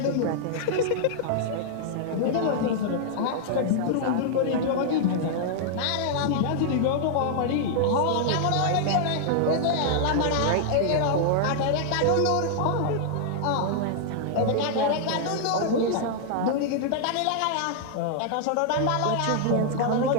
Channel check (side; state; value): both; different; correlation -0.01